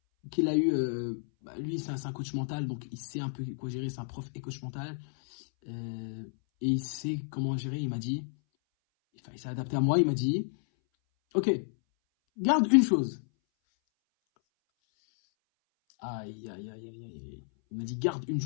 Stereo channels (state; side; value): silent; right; 57 dB below the other